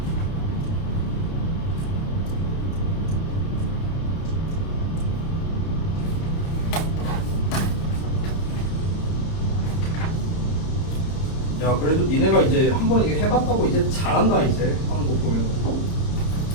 야 그래도 니네가 이제 한 번 이게 해봤다고 이제 잘한다 이제 하는 거 보면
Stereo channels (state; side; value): late; right; 30 ms